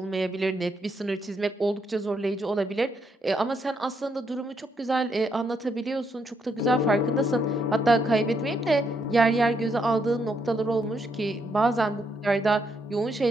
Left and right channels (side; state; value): both; normal; correlation 0.76